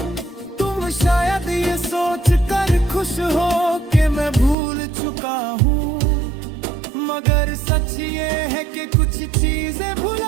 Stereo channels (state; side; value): drops out; left; at 4.5 s